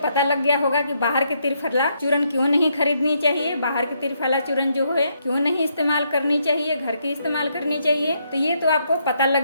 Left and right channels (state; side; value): inverted; both; correlation -0.76